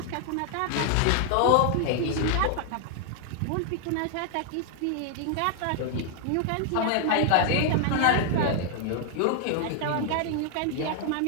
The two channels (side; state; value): both; different; correlation 0.00